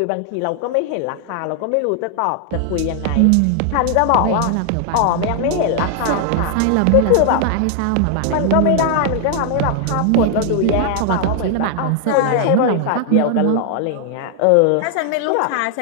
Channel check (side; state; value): both; different; correlation 0.00